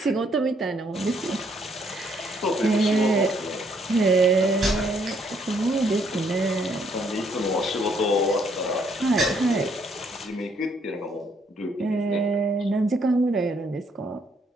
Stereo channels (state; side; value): normal; both; correlation 0.69